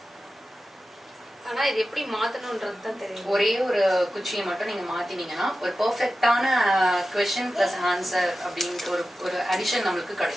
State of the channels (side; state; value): both; normal; correlation 0.93